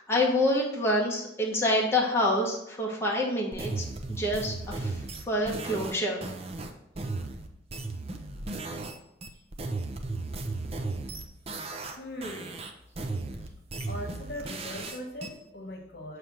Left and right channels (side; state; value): both; normal; correlation 0.33